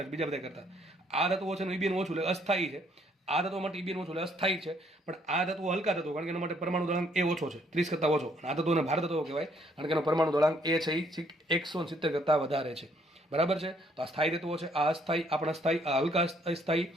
છે બીજા બધા કરતા. આ તત્વો છે એનું ઈબીએન ઓછું એટલે અસ્થાયી છે. આ તત્વો માટે ઈબીએન ઓછું એટલે અસ્થાયી છે. પણ આ તત્વો હલકા તત્વો, કારણ કે એના માટે પરમાણુ દળાંક એ ઓછો છે, 30 કરતાં ઓછો. આ તત્વોને ભાર તત્વો કહેવાય કારણ કે એનો પરમાણુ દળાંક એ છે એ 170 કરતાં વધારે છે, બરાબર છે. તો આ સ્થાયી તત્વો છે, આ અસ્થાયી, આપણા સ્થાયી, આ હલકા અસ્થાયી,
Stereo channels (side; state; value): both; normal; correlation 0.67